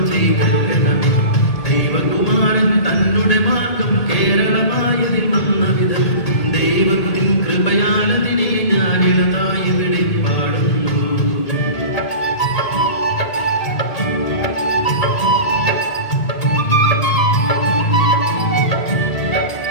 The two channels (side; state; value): right; late; 1.8 ms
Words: ചെയ്തണമേ ദൈവകുമാരൻ തന്നുടെ മാർഗം കേരളമായതിൽ വന്ന വിധം ദൈവത്തിൻ കൃപയാലതിനെ ഞാനിളതായി ഇവിടെ പാടുന്നു.